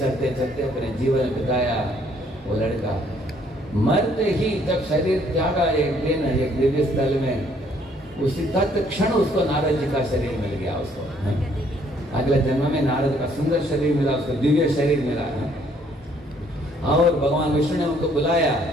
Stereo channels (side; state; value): both; normal; correlation 0.64